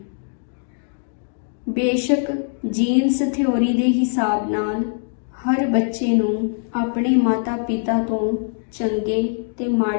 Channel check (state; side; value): silent; right; 64 dB below the other